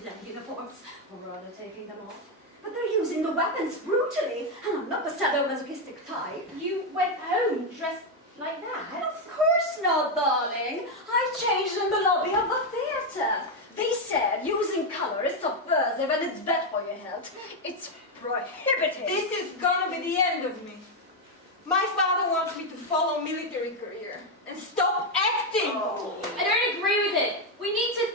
love uniforms. Or rather taking them off. But they're using the weapons brutally, and I'm not a sadomasochistic type. You went home dressed like that? Of course not, darling. I changed in the lobby of the theatre. They said using color is subversive and it's bad for your health. It's prohibited. This is gonna be the end of me. My father wants me to follow military career and stop acting. I don't agree with it. We need to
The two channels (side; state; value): both; normal; correlation 0.04